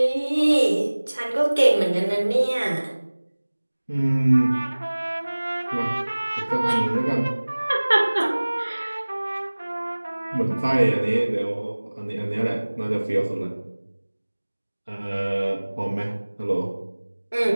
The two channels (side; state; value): both; inverted; correlation -1.00